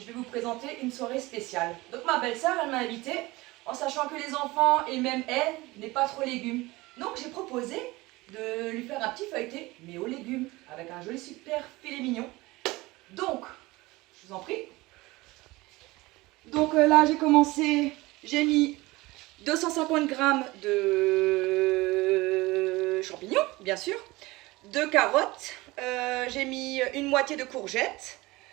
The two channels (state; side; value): quieter; left; 21.0 dB